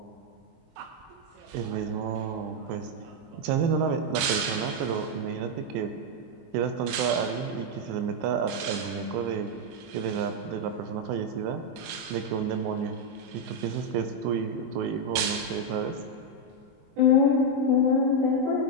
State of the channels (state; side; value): late; left; 24 ms